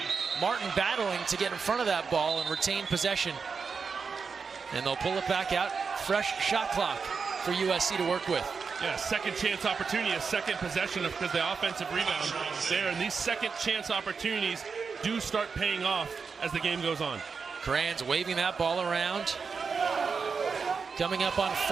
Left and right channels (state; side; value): quieter; left; 5.4 dB